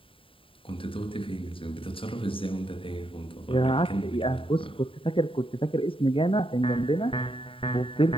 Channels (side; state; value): right; late; 0.25 ms